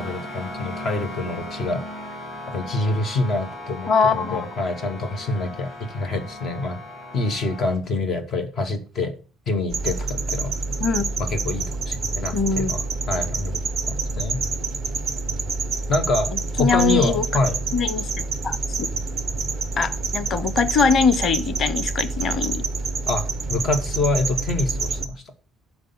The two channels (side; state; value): both; normal; correlation 0.61